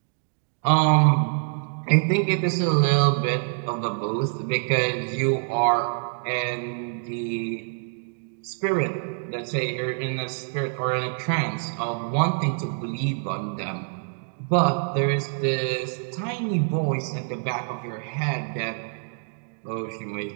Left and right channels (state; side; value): silent; left; digital silence